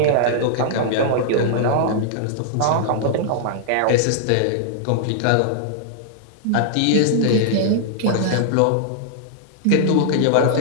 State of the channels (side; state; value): both; different; correlation -0.01